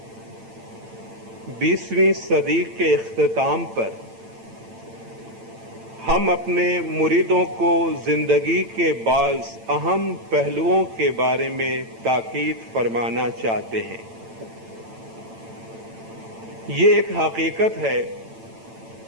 20ویں صدی کے اختتام پر ہم اپنے مریدوں کو زندگی کے بعض اہم پہلوؤں کے بارے میں تاکید فرمانا چاہتے ہیں۔ یہ ایک حقیقت ہے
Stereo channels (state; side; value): late; left; 8.9 ms